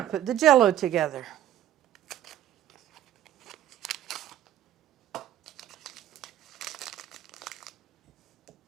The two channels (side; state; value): left; quieter; 12.1 dB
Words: put the jello together.